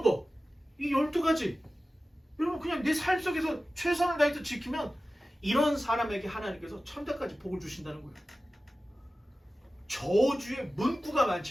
거, 이 12가지 여러분 그냥 내 삶 속에서 최선을 다해서 지키면 이런 사람에게 하나님께서 천대까지 복을 주신다는 거예요. 저주의 문구가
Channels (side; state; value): both; normal; correlation 0.95